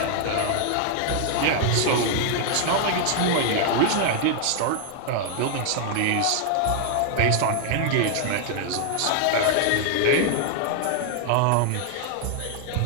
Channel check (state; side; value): different; both; correlation 0.00